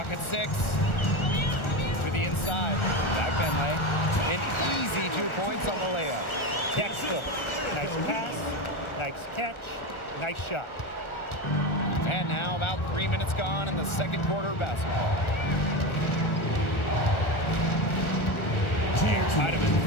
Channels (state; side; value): late; right; 1.4 ms